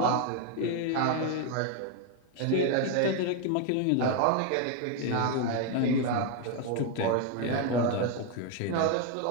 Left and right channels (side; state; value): both; different; correlation 0.01